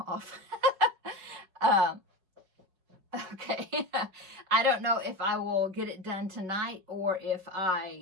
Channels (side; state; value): left; late; 5.4 ms